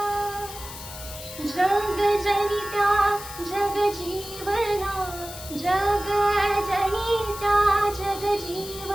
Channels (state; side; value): noise; left; hiss, 12 dB below the sound